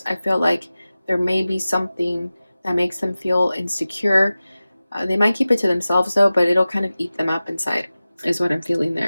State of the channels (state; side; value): inverted; both; correlation -0.96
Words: I feel like there may be something that makes them feel insecure. They might keep it to themselves though, but it'll kind of eat them up inside, is what I'm feeling